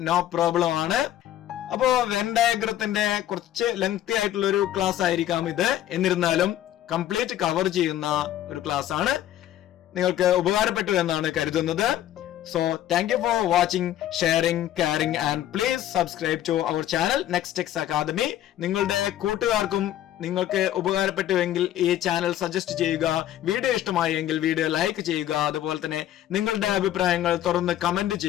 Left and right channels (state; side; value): quieter; right; 12.5 dB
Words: നോ പ്രോബ്ലം ആണ്. അപ്പോ വെൻ ഡയഗ്രത്തിന്റെ കുറച്ച് ലെങ്തി ആയിട്ടുള്ള ഒരു ക്ലാസ് ആയിരിക്കാം ഇത്. എന്നിരുന്നാലും കംപ്ലീറ്റ് കവർ ചെയ്യുന്ന ഒരു ക്ലാസ് ആണ്. നിങ്ങൾക്ക് ഉപകാരപ്പെട്ടു എന്നാണ് കരുതുന്നത്. So thank you for watching, sharing, caring and please subscribe to our channel Nextex Academy. നിങ്ങളുടെ കൂട്ടുകാർക്കും നിങ്ങൾക്ക് ഉപകാരപ്പെട്ടുവെങ്കിൽ ഈ ചാനൽ സജസ്റ്റ് ചെയ്യുക. വീഡിയോ ഇഷ്ടമായെങ്കിൽ വീഡിയോ ലൈക്ക് ചെയ്യുക. അതുപോലെ തന്നെ നിങ്ങളുടെ അഭിപ്രായങ്ങൾ തുറന്ന് കമന്റ്